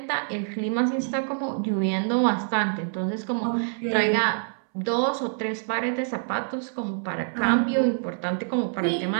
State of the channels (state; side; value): silent; left; 61 dB below the other